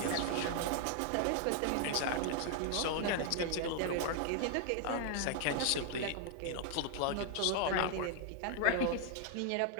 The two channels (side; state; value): both; different; correlation 0.00